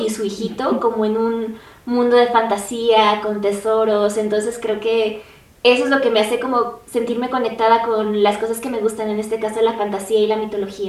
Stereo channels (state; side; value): identical; both; correlation 1.00